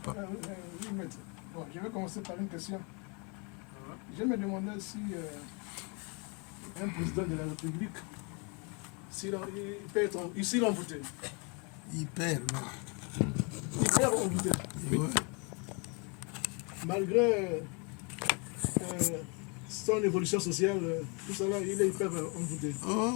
Oui, maître. Bon, je vais commencer par une question. Je me demandais si un président de la République, s'il peut être ici envoûté. Hyper, non. Hyper envoûté. Oui. Ouais. Malgré son évolution sociale, tout ça là, il est hyper envoûté.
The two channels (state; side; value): quieter; right; 33.3 dB